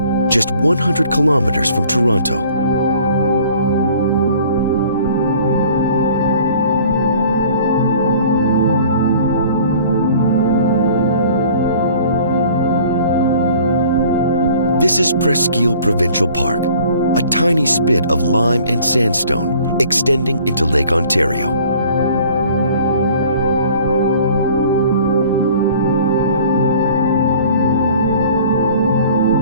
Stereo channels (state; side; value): inverted; both; correlation -0.51